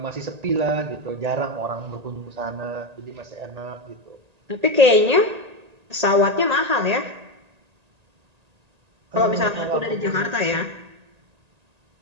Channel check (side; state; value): left; late; 1.8 ms